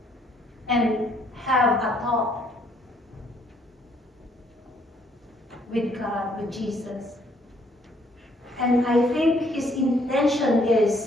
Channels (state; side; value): normal; both; correlation 0.66